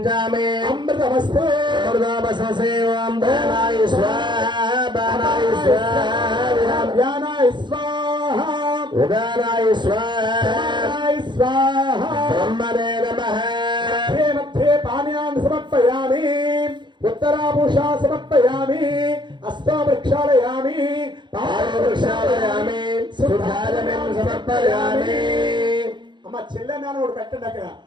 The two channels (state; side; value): late; left; 0.22 ms